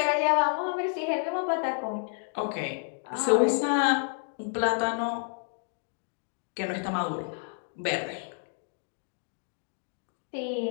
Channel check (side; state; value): right; silent; 58 dB below the other